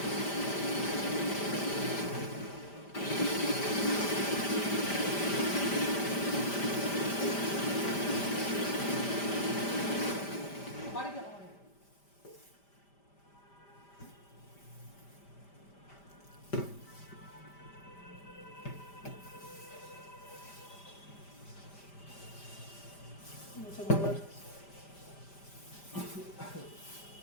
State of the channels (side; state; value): right; late; 5.1 ms